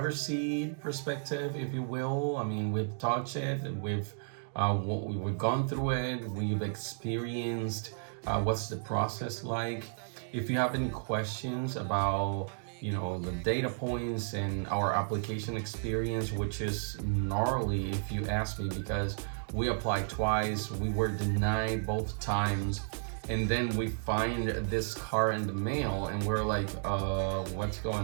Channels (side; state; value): left; silent; digital silence